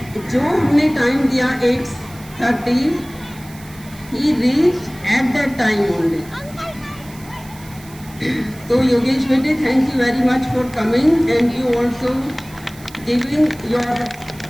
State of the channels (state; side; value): noise; right; hiss, 21 dB below the sound